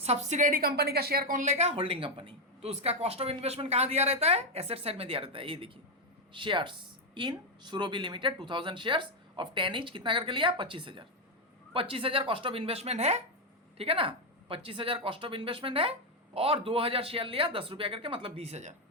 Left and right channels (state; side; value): normal; both; correlation 0.05